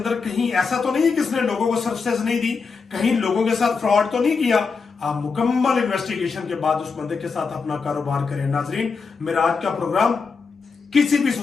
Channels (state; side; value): quieter; right; 5.0 dB